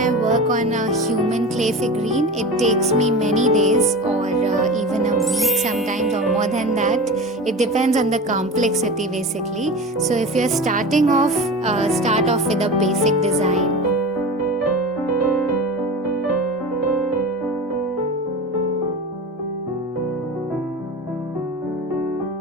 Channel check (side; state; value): both; normal; correlation 0.31